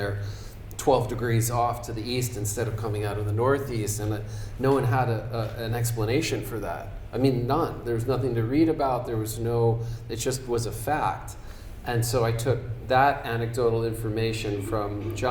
12 degrees off to the east instead of coming out of the northeast, and no one had an explanation for that. I mean, none. There was nothing to read about. It just was a fact. And so I took that anecdotal information from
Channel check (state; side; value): identical; both; correlation 1.00